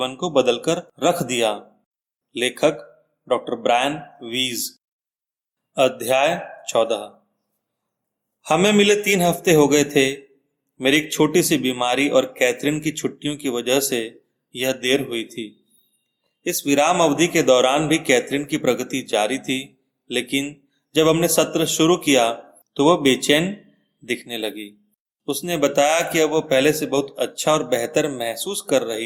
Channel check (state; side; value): identical; both; correlation 1.00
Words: को बदलकर रख दिया। लेखक डॉक्टर ब्रायन वीज। अध्याय 14। हमें मिले 3 हफ्ते हो गए थे। मेरी एक छोटी सी बीमारी और कैथरीन की छुट्टियों की वजह से यह देर हुई थी। इस विराम अवधि के दौरान भी कैथरीन की प्रगति जारी थी, लेकिन जब हमने सत्र शुरू किया तो वह बेचैन दिखने लगी। उसने बताया कि अब वह पहले से बहुत अच्छा और बेहतर महसूस कर